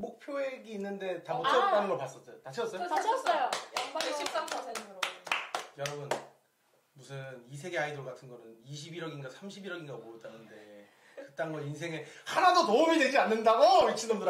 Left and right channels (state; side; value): identical; both; correlation 1.00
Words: 있는데 다 못 채웠다는 걸 봤었죠. 다 채웠어요? 다 채웠어요. 양방이 13%로. 여러분 무슨 이세계 아이돌 같은 거는 21억인가 31억인가 모였다는데 그딴 거 인생에 하나도 도움이 되지 않는다고